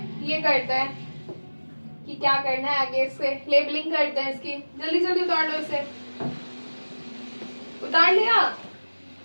ये करते हैं कि क्या करना है आगे। इससे लेबलिंग करते हैं इसकी। जल्दी जल्दी उतार लो इसे। उतार लिया?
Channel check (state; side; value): inverted; both; correlation -1.00